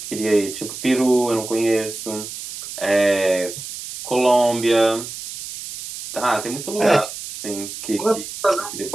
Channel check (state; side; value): noise; right; hiss, 10 dB below the sound